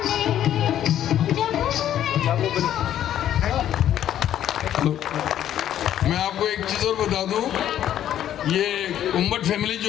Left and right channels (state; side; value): quieter; right; 11.2 dB